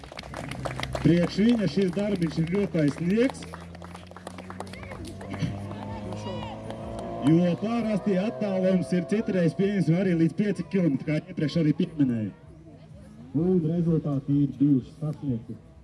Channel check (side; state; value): both; identical; correlation 1.00